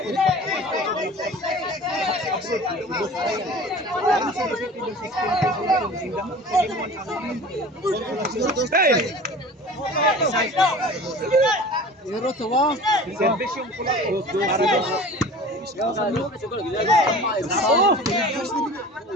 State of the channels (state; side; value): normal; both; correlation 0.40